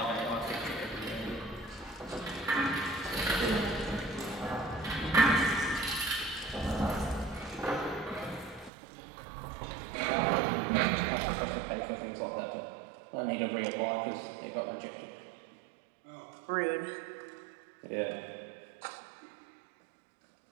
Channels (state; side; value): drops out; left; at 8.7 s